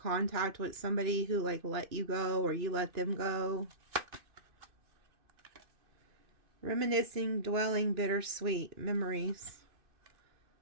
with somebody who like let you go or you let them go. Reminiscing, dwelling, bittersweet, memories.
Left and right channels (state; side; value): late; left; 2.6 ms